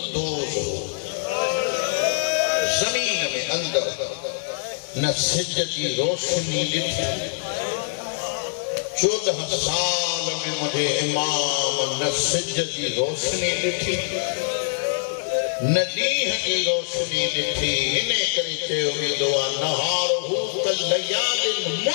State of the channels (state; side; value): silent; right; digital silence